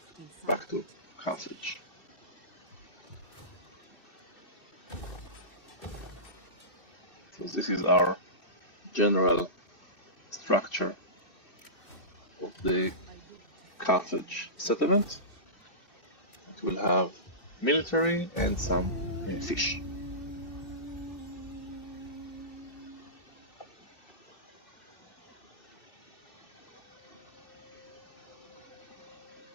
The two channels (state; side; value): late; right; 2.6 ms